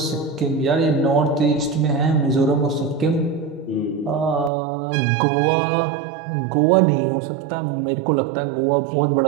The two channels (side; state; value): left; drops out; at 4.5 s